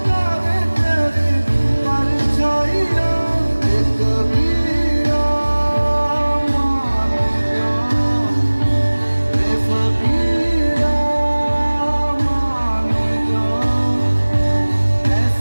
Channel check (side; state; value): both; inverted; correlation -1.00